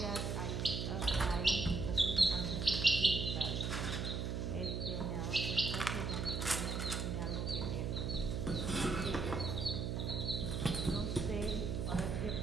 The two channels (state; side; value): noise; right; hum, 1 dB below the sound